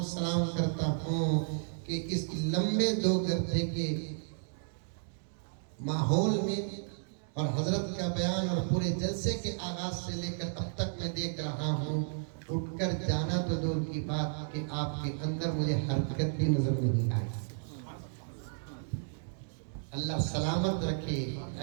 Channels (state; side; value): silent; left; digital silence